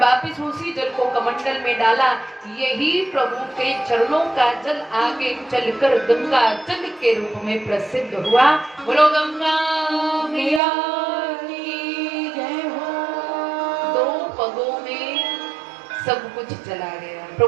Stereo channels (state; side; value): drops out; left; at 10.6 s